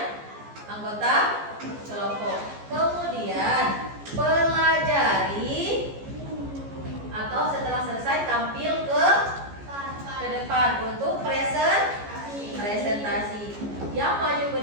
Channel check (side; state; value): left; late; 14 ms